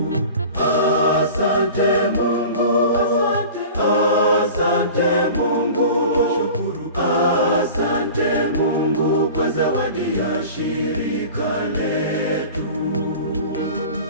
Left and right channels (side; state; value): both; inverted; correlation -0.39